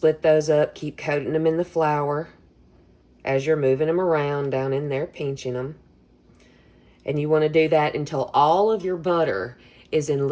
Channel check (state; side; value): identical; both; correlation 1.00